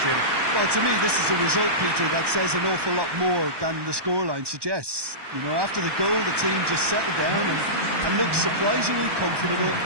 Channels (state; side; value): late; left; 1.2 ms